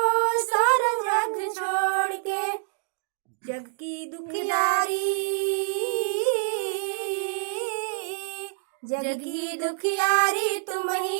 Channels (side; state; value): left; silent; digital silence